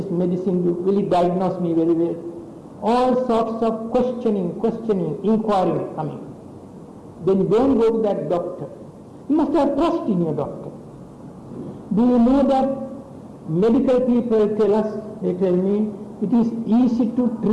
medicine, will he diagnose me very well? All sorts of questioning, inquiring coming. Then don't go to that doctor. You must have trust in your doctor. Do you know that medical people tell us, they tell me, it is easy to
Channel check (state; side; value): identical; both; correlation 1.00